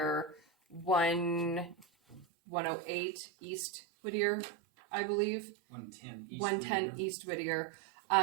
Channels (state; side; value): drops out; left; at 2.2 s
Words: 108 East Whittier, I believe. 110 East Whittier.